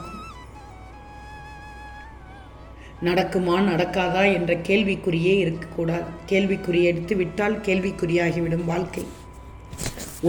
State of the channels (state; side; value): identical; both; correlation 1.00